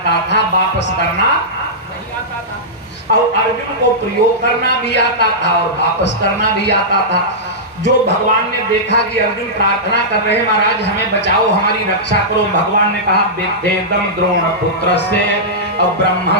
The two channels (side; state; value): both; normal; correlation -0.13